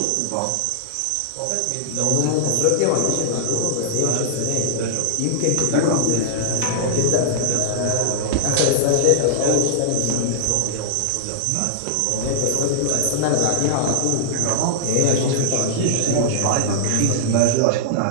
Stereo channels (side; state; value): both; different; correlation -0.01